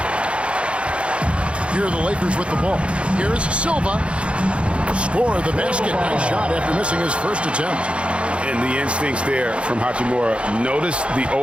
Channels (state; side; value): late; left; 0.059 ms